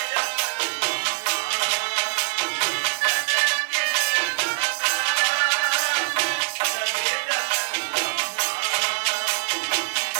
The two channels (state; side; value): silent; left; digital silence